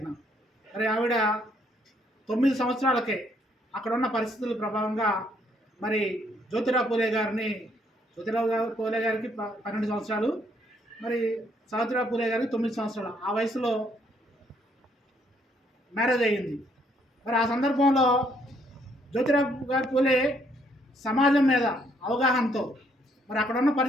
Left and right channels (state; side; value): normal; both; correlation 0.69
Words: మరి ఆవిడ 9 సంవత్సరాలకే అక్కడున్న పరిస్థితుల ప్రభావంగా మరి జ్యోతిరావు పూలే గారికి 12 సంవత్సరాలు, మరి సావిత్రిబాయి పూలే గారికి 9 సంవత్సరాలు. ఆ వయసులో మ్యారేజ్ అయ్యింది. మరి ఆ సందర్భంలో జ్యోతిరావు పూలే సమాజం మీద అవగాహనతో మరి అక్కడున్న